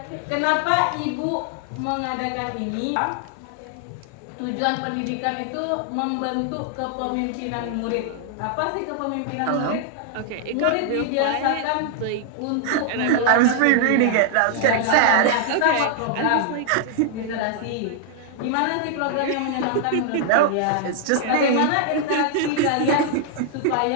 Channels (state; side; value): different; both; correlation 0.00